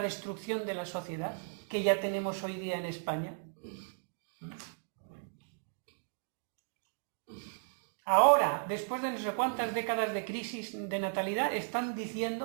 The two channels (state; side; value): silent; left; digital silence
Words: de la sociedad que ya tenemos hoy día en España. Ahora, después de no sé cuántas décadas de crisis de natalidad, están